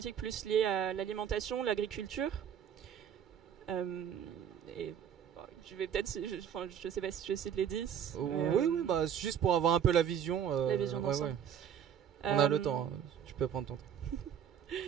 plus liée à l'alimentation, l'agriculture. Je vais peut-être, je sais pas si je cite les 10. Oui, juste pour avoir un peu la vision. La vision d'ensemble. Ouais. On a le temps, tu peux prendre ton temps.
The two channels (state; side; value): quieter; left; 8.8 dB